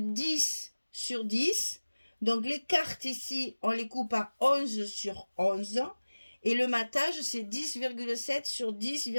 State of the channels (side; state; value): both; inverted; correlation -1.00